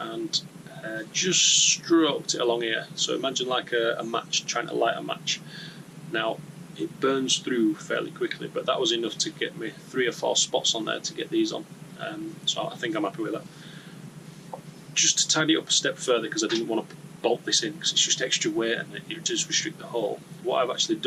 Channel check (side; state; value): both; identical; correlation 1.00